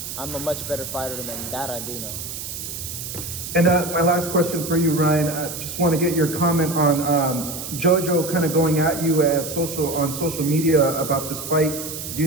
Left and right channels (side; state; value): right; noise; hiss, 8 dB below the sound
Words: a much better fighter than that. I do know. And my last question for you, Ryan, I just want to get your comment on JoJo kind of going at you on social media about this fight. Do